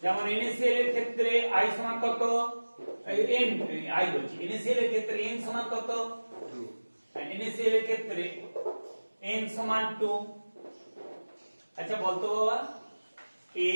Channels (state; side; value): inverted; both; correlation -1.00